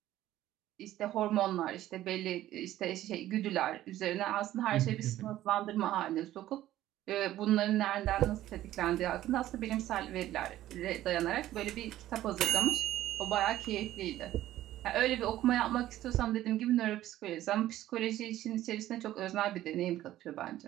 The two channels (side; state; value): left; quieter; 13.9 dB